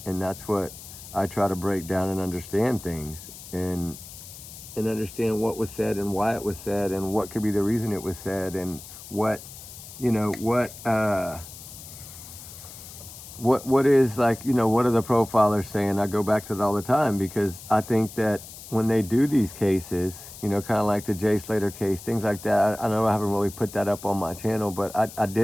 And that's what I try to break down and understand things, and understand what was said and why it was said and what could be the reason it was said, and what, you know, what is, like, you know, what are the profilers saying? I go back to that all the time, because I think that when they do these cases, you know, kind of like the Jay Slater case, things like that, I know I haven't really put that up on my channel, but I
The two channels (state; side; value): noise; left; hiss, 15 dB below the sound